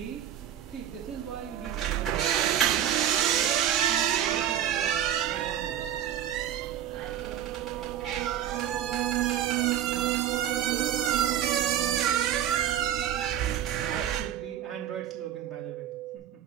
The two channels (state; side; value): quieter; left; 10.7 dB